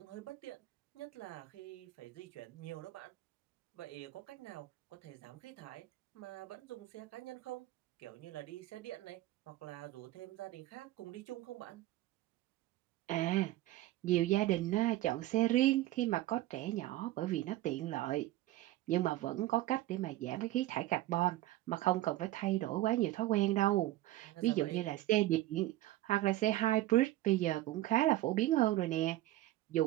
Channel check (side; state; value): left; quieter; 16.0 dB